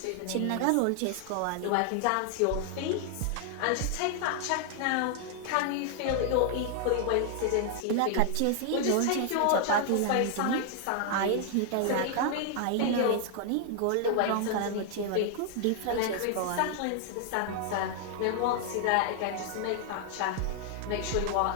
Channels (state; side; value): different; both; correlation 0.00